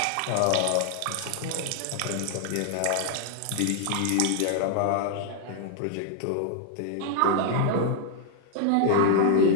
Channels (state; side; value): different; both; correlation 0.00